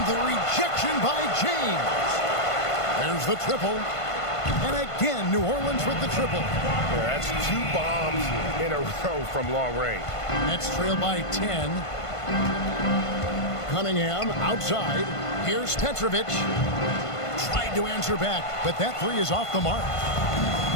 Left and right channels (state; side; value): late; right; 1.5 ms